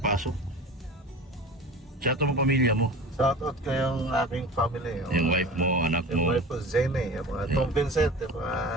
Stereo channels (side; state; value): both; normal; correlation 0.36